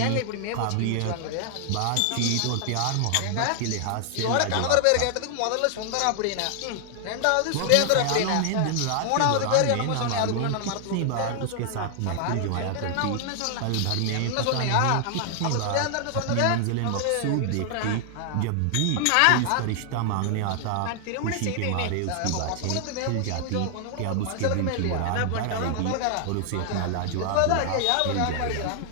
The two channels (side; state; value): both; different; correlation 0.00